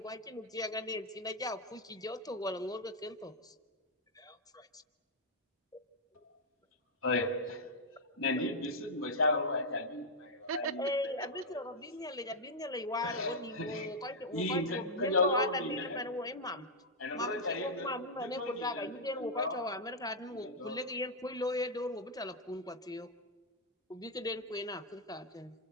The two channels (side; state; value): both; normal; correlation -0.03